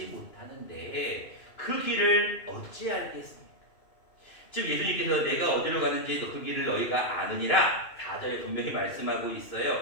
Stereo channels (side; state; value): right; late; 2.7 ms